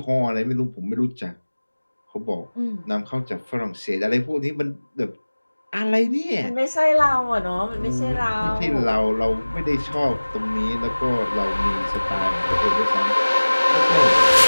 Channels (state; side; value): inverted; both; correlation -1.00